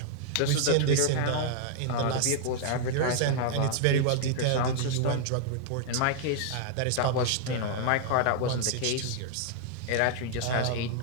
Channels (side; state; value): both; different; correlation -0.01